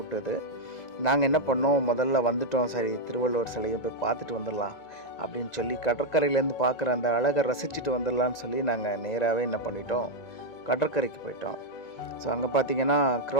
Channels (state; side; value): late; right; 1.9 ms